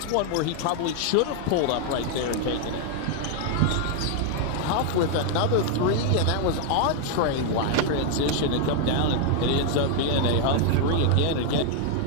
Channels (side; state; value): both; different; correlation 0.00